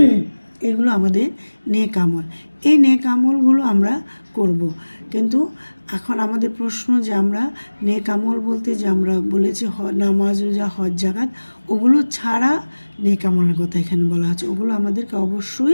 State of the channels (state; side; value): inverted; both; correlation -1.00